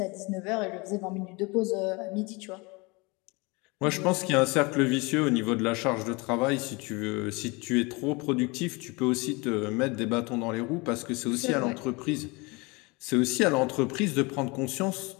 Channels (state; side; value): quieter; right; 26.8 dB